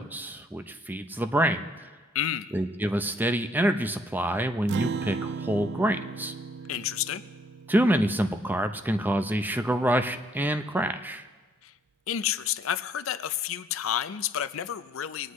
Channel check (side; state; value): both; normal; correlation 0.66